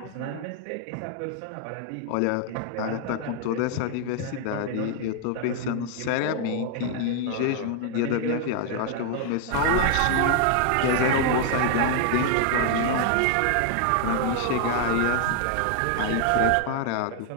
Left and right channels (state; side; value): different; both; correlation 0.00